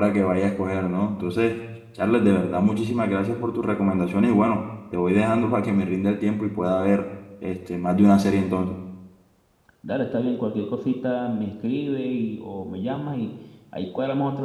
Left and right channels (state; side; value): identical; both; correlation 1.00